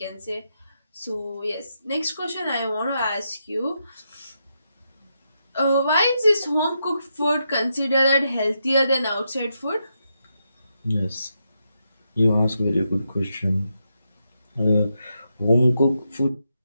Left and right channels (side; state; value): both; inverted; correlation -0.84